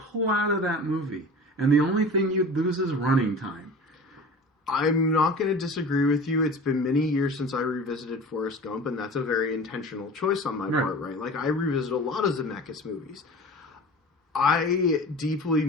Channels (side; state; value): both; normal; correlation 0.37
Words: out of that movie, and the only thing you'd lose is running time. I'm not going to disagree with you. It's been many years since I revisited Forrest Gump, and that's a very intentional choice on my part, right? Like, I revisit a lot of Zemeckis movies. I deeply